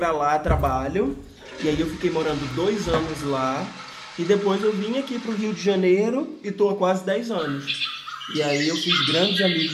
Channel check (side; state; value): both; identical; correlation 1.00